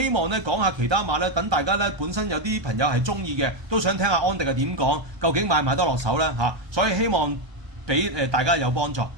望咧講下其他馬咧，等大家咧本身有啲朋友係中意嘅，都想聽下安迪係點講，究竟買唔買得落手咧所以希望俾大家有幫助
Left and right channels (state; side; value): late; left; 1.2 ms